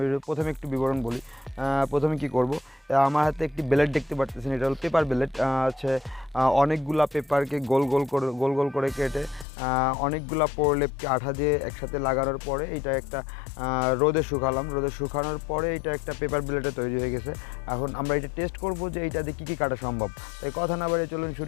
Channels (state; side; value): drops out; right; at 9.5 s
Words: ভিডিও। প্রথমে একটু বিবরণ বলি। প্রথমে কি করব, আমার হাতে একটি ব্লেড দেখতে পাচ্ছেন, এটা হলো পেপার ব্লেড। হচ্ছে অনেকগুলা পেপারকে গোল গোল করে কেটে অনেকগুলা প্রলেপকে আঠা দিয়ে একসাথে লাগানোর পরে এটা একটা রোদে শুকালাম। রোদে শুকানোর পরে এটা একটা পেপার ব্লেডে তৈরি হয়ে গেছে। এখন আমরা এটা টেস্ট করব যে এইটা দিয়ে কী কী কাটা সম্ভব। তাই কথা না বাড়িয়ে চলুন